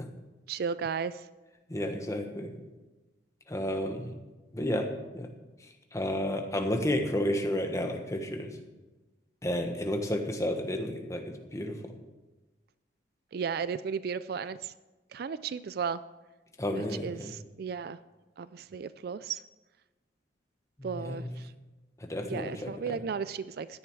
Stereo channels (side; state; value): both; normal; correlation 0.48